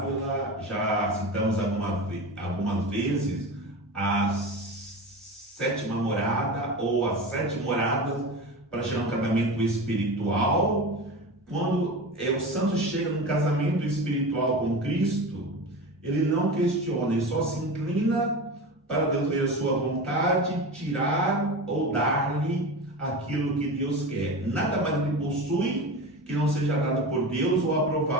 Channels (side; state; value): both; normal; correlation 0.27